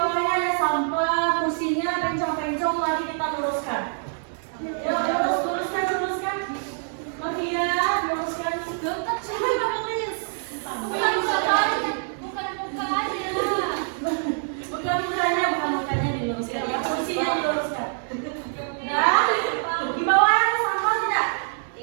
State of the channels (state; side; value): silent; left; 62 dB below the other